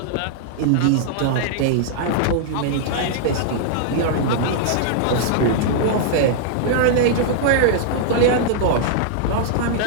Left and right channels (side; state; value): both; different; correlation -0.01